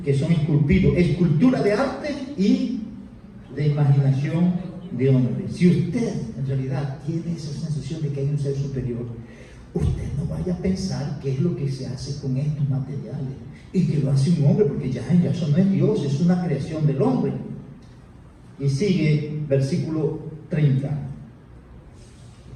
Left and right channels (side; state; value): both; identical; correlation 1.00